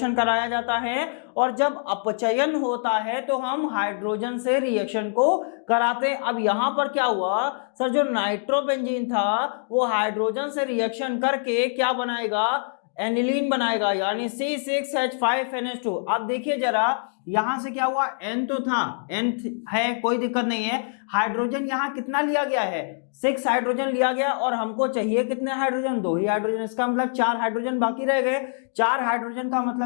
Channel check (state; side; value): silent; right; digital silence